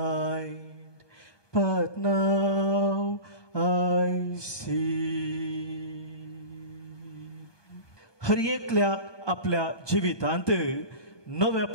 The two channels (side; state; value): right; late; 1.2 ms